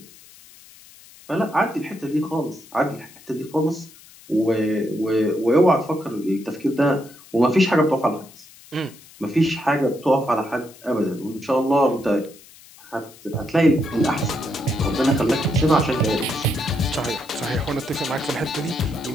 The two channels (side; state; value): left; noise; hiss, 23 dB below the sound